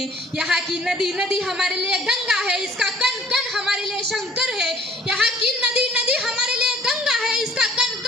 यहाँ की नदी नदी हमारे लिए गंगा है, इसका कण कण हमारे लिए शंकर है। यहाँ की नदी नदी हमारे लिए गंगा है, इसका कण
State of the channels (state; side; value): normal; both; correlation 0.54